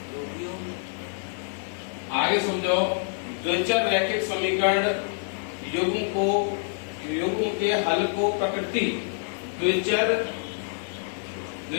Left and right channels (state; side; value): silent; right; 60 dB below the other